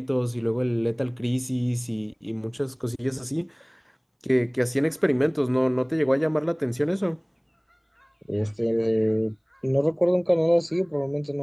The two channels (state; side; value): identical; both; correlation 1.00